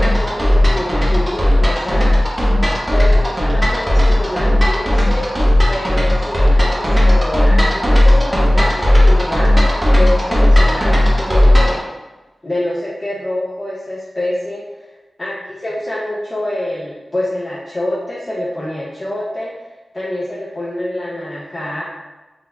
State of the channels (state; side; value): normal; both; correlation 0.98